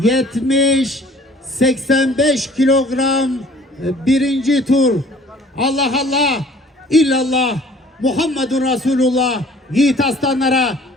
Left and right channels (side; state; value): both; normal; correlation 0.53